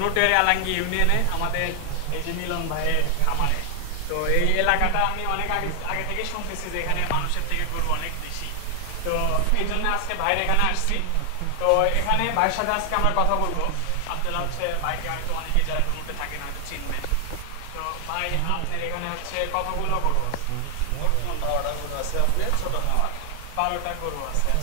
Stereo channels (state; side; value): different; both; correlation 0.00